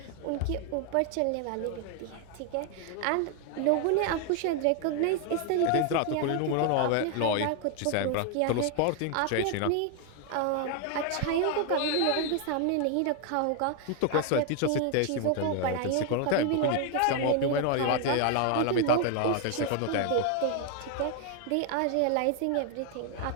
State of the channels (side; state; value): both; different; correlation 0.00